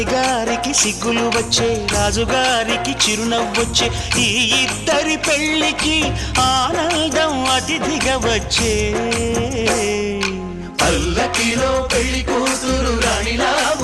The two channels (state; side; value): identical; both; correlation 1.00